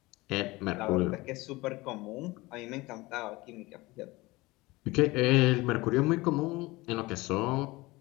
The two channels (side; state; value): right; quieter; 21.5 dB